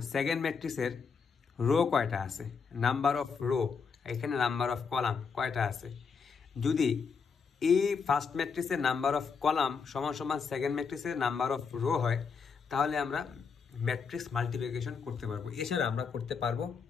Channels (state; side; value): quieter; right; 5.7 dB